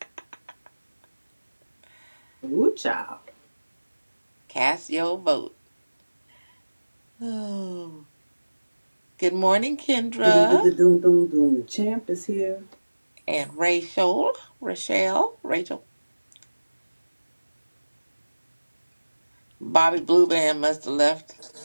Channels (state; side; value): inverted; both; correlation -1.00